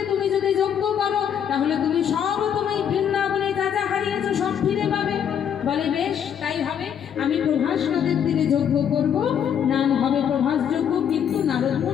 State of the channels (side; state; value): right; quieter; 8.6 dB